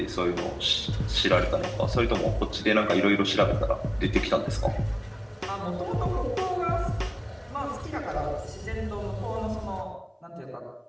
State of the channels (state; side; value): identical; both; correlation 1.00